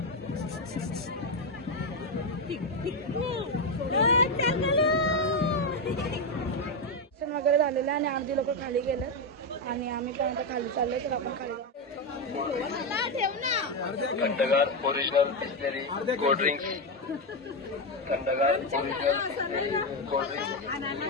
वगैरे झालेलं आणि अर्धी लोक खाली गेले आणि आम्ही पण आता खाली चाललोय तर आपण खाली जाऊ. खंडगार ओरिजिनल बिस्लेरी कोल्ड ड्रिंक्स खंडगार ओरिजिनल बिस्लेरी कोल्ड ड्रिंक्स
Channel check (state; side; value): normal; both; correlation 0.07